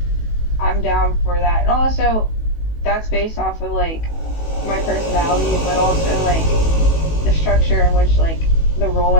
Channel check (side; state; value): right; late; 18 ms